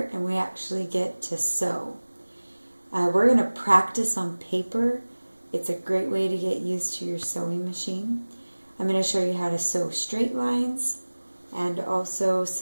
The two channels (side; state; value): both; inverted; correlation -1.00